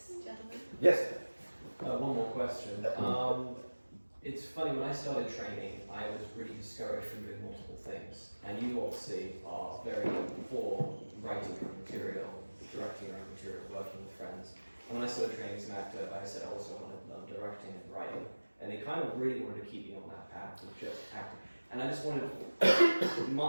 Yes? One more question. It's funny, when I started training, I was really discouraged from doing multiple things. And you obviously are very for writing your own material, directing your own material, working with friends. And when I started training as an actor, I said I also wanted to learn directing and writing. And they kind of really wanted to keep me on that path of just acting. And I just wanted,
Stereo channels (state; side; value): inverted; both; correlation -1.00